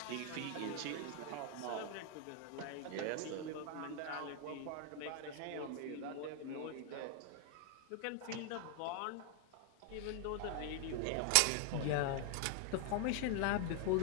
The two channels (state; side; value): different; both; correlation 0.00